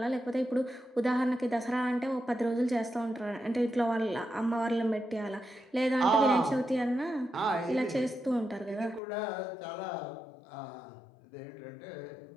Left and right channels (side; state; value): right; drops out; at 9.0 s